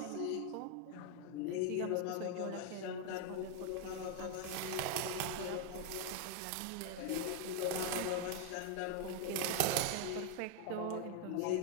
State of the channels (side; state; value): both; different; correlation 0.00